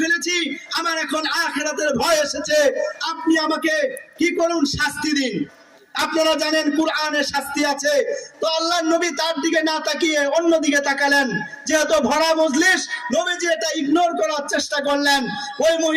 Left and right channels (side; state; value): both; identical; correlation 1.00